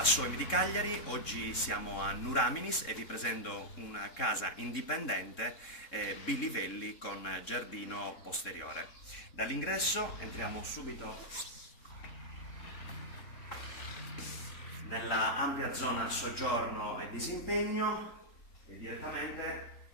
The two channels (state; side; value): late; right; 3.7 ms